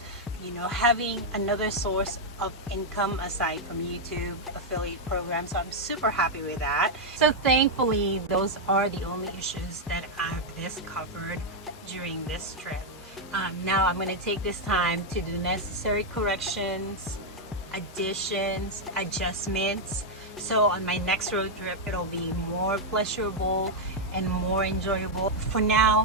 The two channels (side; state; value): both; normal; correlation -0.01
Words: having another source of income aside from YouTube affiliate programs. So I'm super happy with that. So thankfully, those are the only issues that I've discovered during this trip. Now I'm going to take this time to do necessary corrections, additions, adjustments. So on my next road trip, it'll be more pleasurable and more enjoyable. For now,